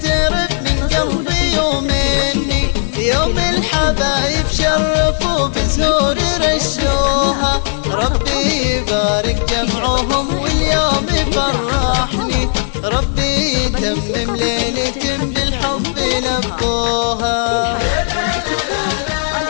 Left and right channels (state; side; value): silent; right; 61 dB below the other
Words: من قلبي ومني، يوم الحبايب شرفوا بزهور رشوها، ربي يبارك جمعهم واليوم يفرحني، ربي يتمم ليلة بالحب لبوها.